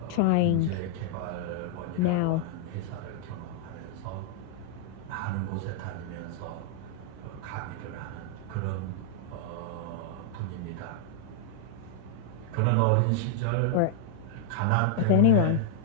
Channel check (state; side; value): different; both; correlation -0.01